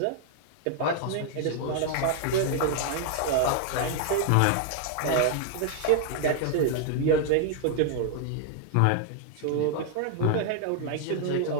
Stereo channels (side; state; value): both; different; correlation 0.00